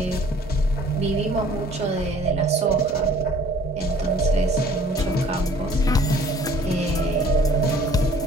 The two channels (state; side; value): normal; both; correlation 0.54